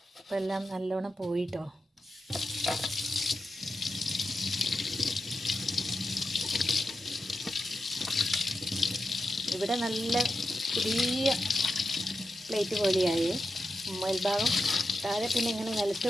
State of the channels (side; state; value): both; normal; correlation 0.89